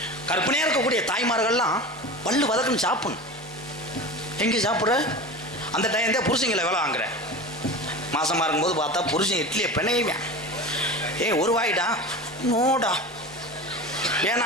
கற்பனையா இருக்கக்கூடிய தாய்மார்கள்லாம் பல்லு வதக்குன்னு சாப்பிடணும். எங்கே சாப்பிட்ற அந்த டைம் தான் புருஷங்களை வேலை வாங்குற. மாசமா இருக்கும்போது பார்த்தா புருஷன் இட்லியை பிணையுவேன். ஒரு வாயிடா நோடா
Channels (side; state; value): both; normal; correlation 0.31